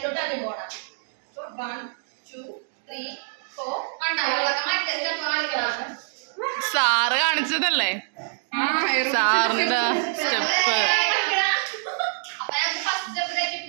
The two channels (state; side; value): silent; left; digital silence